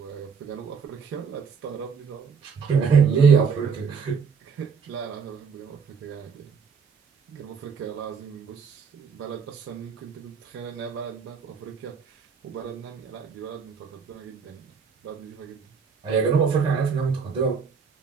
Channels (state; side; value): quieter; left; 6.0 dB